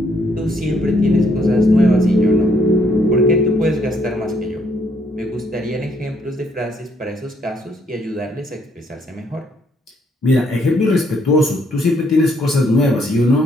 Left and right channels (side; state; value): both; normal; correlation 0.70